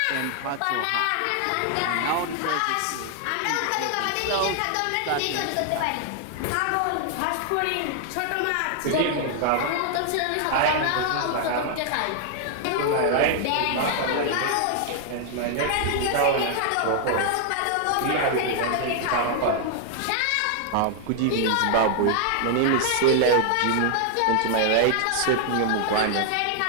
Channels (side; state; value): both; different; correlation 0.00